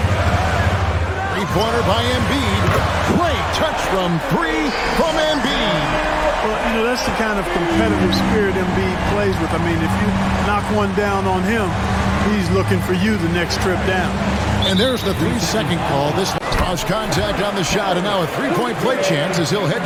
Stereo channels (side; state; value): both; identical; correlation 1.00